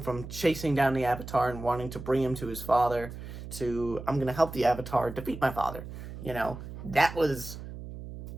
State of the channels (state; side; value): noise; right; hum, 11 dB below the sound